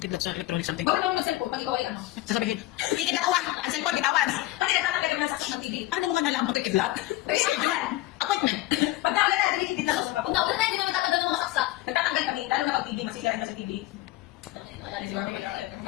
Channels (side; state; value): right; quieter; 16.8 dB